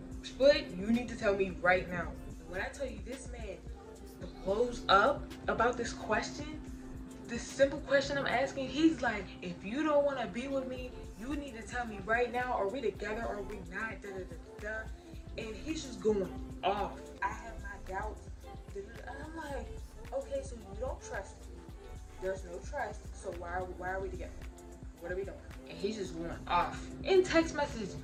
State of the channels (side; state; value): both; identical; correlation 1.00